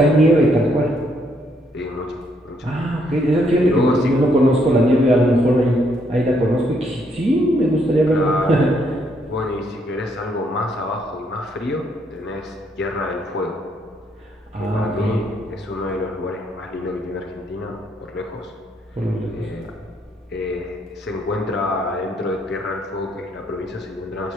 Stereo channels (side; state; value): both; normal; correlation 0.72